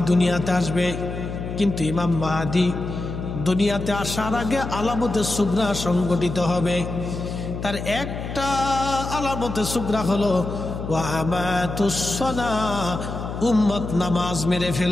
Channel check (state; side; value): noise; left; hum, 6 dB below the sound